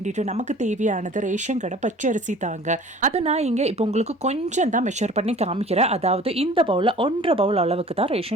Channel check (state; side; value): normal; both; correlation 0.47